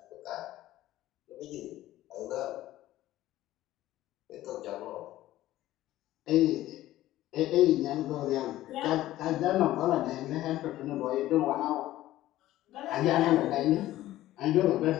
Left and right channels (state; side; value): quieter; right; 14.9 dB